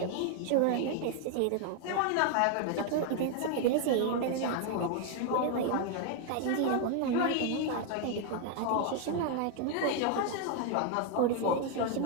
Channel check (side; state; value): both; different; correlation 0.00